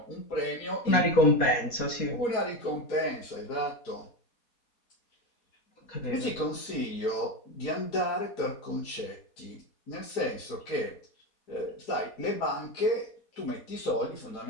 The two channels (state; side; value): late; right; 4.2 ms